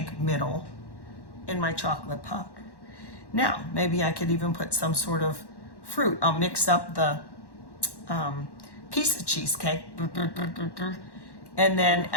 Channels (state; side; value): late; right; 1.1 ms